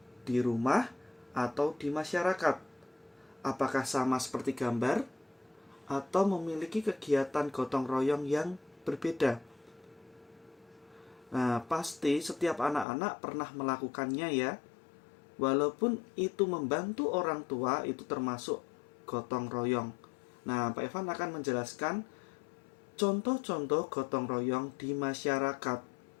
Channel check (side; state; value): right; drops out; at 12.9 s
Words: di rumah atau di masyarakat? Apakah sama seperti gambar atau memiliki kegiatan gotong royong yang berbeda? Nah, pasti setiap anak-anak pernah melakukannya ya. Walaupun itu membantu orang tua, itu termasuk gotong royong. Nah, Pak Evan akan menjelaskan contoh-contoh gotong royong di masyarakat.